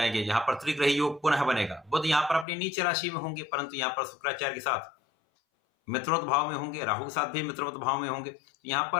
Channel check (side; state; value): right; drops out; at 2.5 s